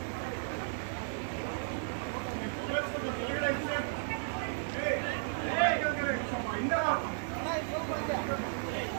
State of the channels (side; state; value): left; silent; digital silence